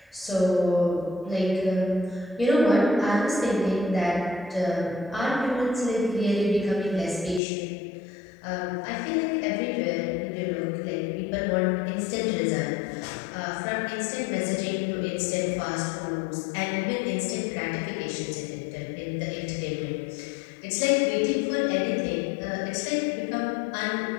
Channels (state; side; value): drops out; right; at 7.4 s